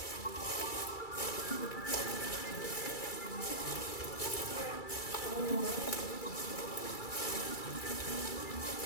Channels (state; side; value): late; right; 2.3 ms